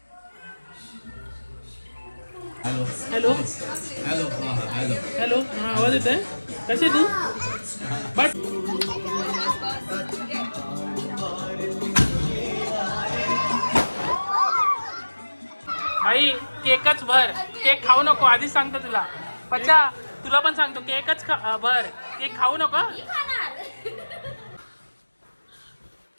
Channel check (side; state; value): both; inverted; correlation -1.00